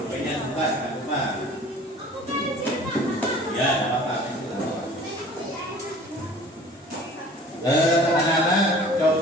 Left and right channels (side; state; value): both; normal; correlation 0.47